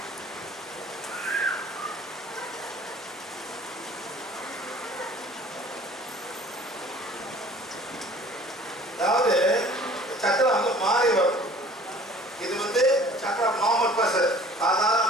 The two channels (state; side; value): normal; both; correlation 0.50